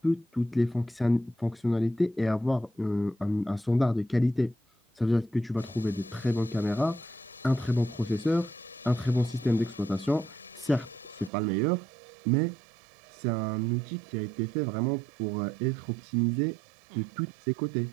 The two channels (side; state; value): left; drops out; at 11.3 s